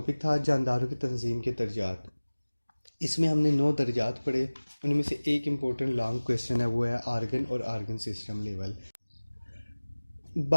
था जानदारों की तंजीम के दर्जात। इसमें हमने 9 दर्जात पढ़े, उनमें से एक इम्पोर्टेंट लॉन्ग क्वेश्चन है वो है आर्गन और आर्गन सिस्टम लेवल।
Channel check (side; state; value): both; inverted; correlation -1.00